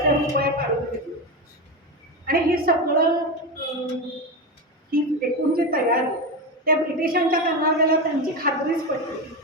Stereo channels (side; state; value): both; normal; correlation 0.17